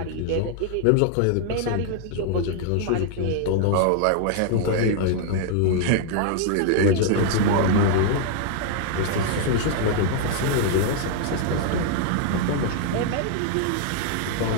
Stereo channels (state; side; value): different; both; correlation 0.00